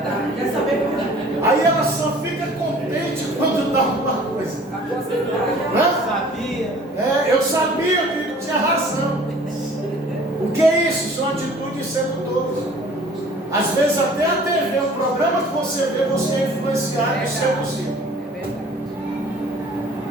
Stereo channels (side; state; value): both; normal; correlation 0.50